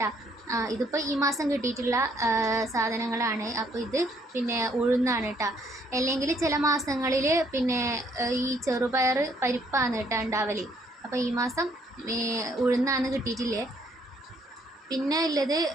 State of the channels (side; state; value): both; normal; correlation 0.67